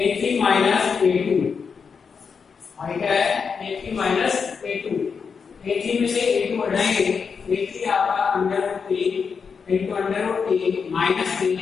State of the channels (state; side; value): quieter; right; 5.8 dB